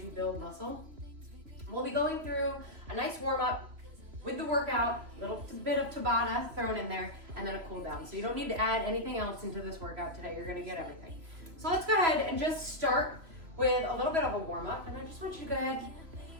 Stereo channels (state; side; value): late; left; 3.0 ms